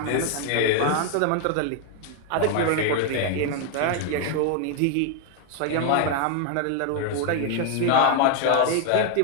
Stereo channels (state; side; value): different; both; correlation 0.00